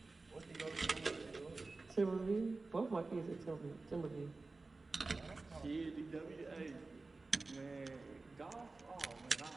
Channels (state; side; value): quieter; left; 3.6 dB